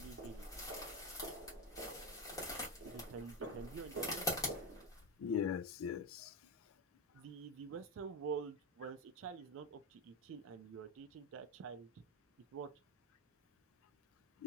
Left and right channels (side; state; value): both; normal; correlation 0.13